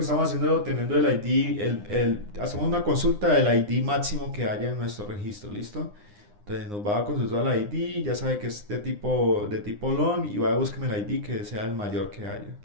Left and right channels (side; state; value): left; late; 9.8 ms